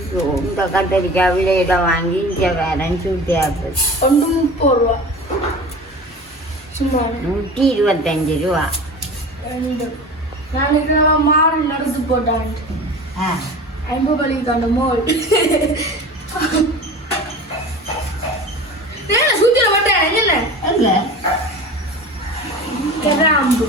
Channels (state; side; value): normal; both; correlation 0.36